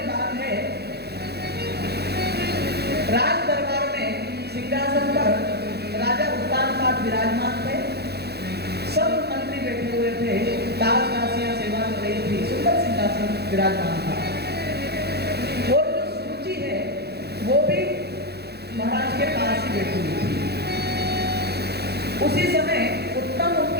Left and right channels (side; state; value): left; late; 0.47 ms